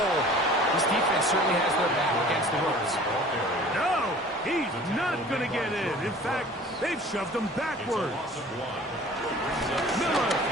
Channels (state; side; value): normal; both; correlation 0.46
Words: this defense certainly has their back against the ropes. No, he's not going to get in. In fact, they've shoved him backwards. Miller